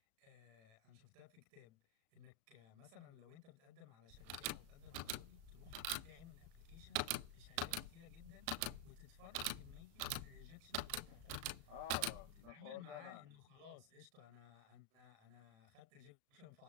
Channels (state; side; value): late; left; 35 ms